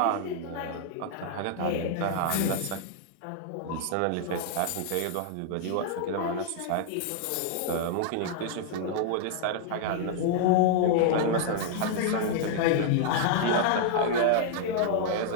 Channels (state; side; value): different; both; correlation -0.01